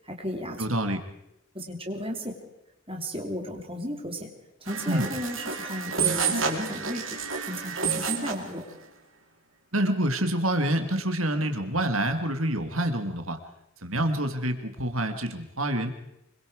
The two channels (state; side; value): normal; both; correlation 0.42